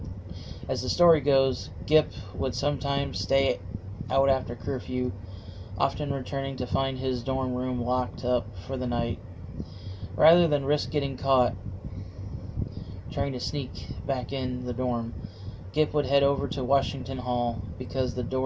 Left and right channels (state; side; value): identical; both; correlation 1.00